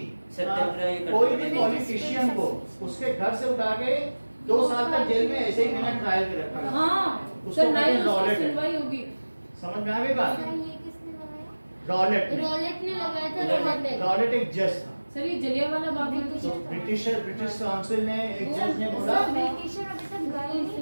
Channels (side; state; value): both; inverted; correlation -1.00